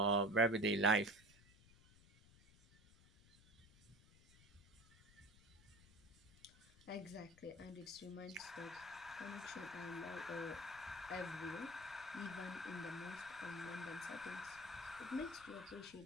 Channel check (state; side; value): noise; left; rumble, 24 dB below the sound